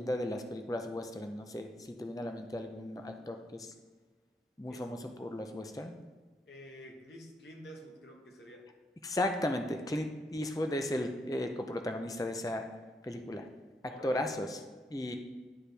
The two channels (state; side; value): normal; both; correlation 0.76